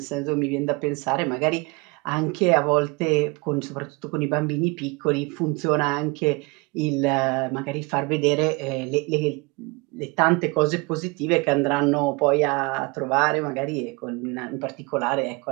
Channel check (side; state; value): left; quieter; 27.1 dB